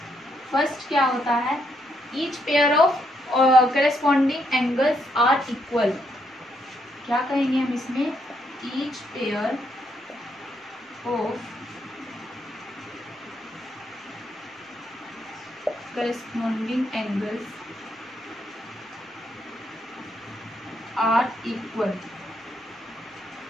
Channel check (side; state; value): both; normal; correlation 0.75